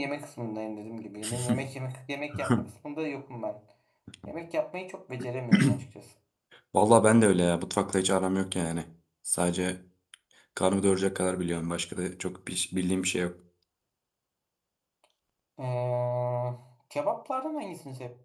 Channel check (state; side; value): identical; both; correlation 1.00